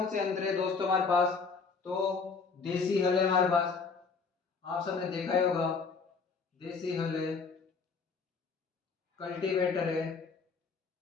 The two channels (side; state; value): right; quieter; 4.9 dB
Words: से यंत्र है दोस्तों हमारे पास? तो देसी हल है हमारे पास, आप सबने देखा ही होगा, देसी हल है, कल्टीवेटर है,